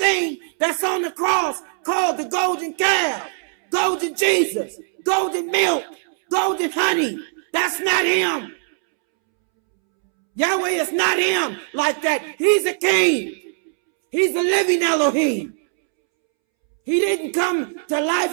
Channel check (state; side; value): silent; left; 65 dB below the other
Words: that's on the cross called the golden calf, golden Jesus, golden milk, golden honey. That's not him. Yahweh is not him like that. He's a king. He's a living Elohim. He didn't come to